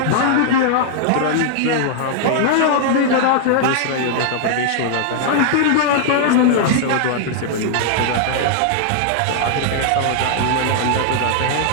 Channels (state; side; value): different; both; correlation 0.00